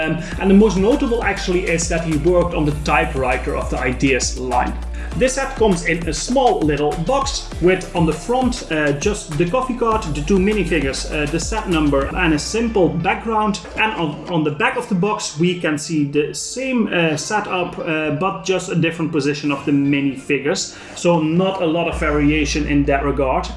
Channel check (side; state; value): both; identical; correlation 1.00